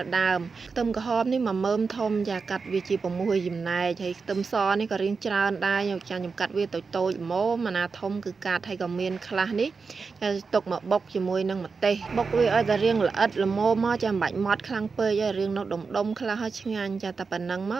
ដើមខ្ទឹមក្រហមនេះ1មើមធំចាកាត់វាជា6ចំណែកហើយខ្ទឹមសនេះក៏រៀងច្រើនដែរខ្ញុំកាត់វាតូចល្មមអាណាធំគឺកាត់ហើយក៏មានខ្លះនេះទុកមកបុកជាមួយនឹងម្ទេសបុកវាឲ្យតែរៀងល្អិតល្មមមកចាំបាច់ម៉ត់ខ្លាំងពេកហើយរៀងនៅដុំខ្លះហើយឆ្ងាញ់ចាតែប៉ុណ្ណឹងម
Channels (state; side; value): quieter; left; 4.8 dB